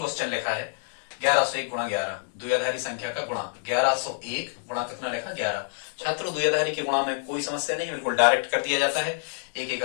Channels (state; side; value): silent; right; 60 dB below the other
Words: लिखा है 1101 गुणा 11, द्विआधारी संख्या का गुणा 1101 गुणा कितना लिखा 11। छात्रों द्विआधारी के गुणा में कोई समस्या नहीं, बिल्कुल डायरेक्ट कर दिया जाता है। 1